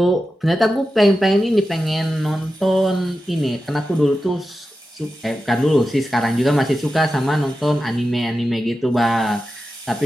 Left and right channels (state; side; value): normal; both; correlation 0.92